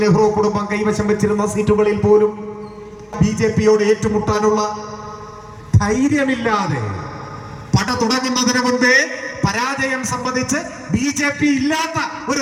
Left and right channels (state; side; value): identical; both; correlation 1.00